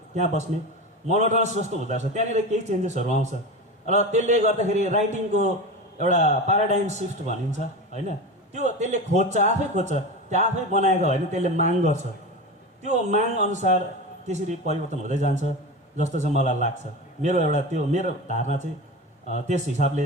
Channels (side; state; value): both; normal; correlation 0.26